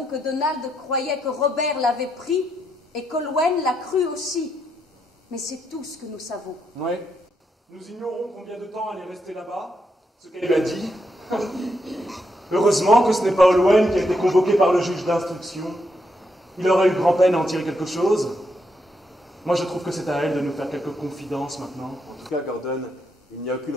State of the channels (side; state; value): both; normal; correlation 0.80